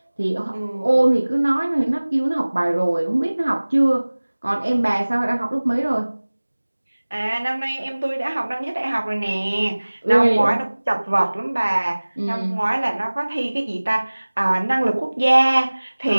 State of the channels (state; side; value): inverted; both; correlation -1.00